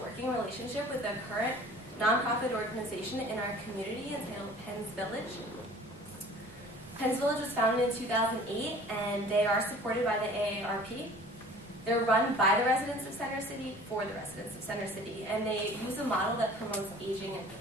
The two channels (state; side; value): normal; both; correlation 0.47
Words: relationship with a current nonprofit organization in our community entitled Penn's Village. Penn's Village was founded in 2008, and they are supported by the AARP. They're run by the residents of Center City for the residents of Center City, and they use a model that promotes aging in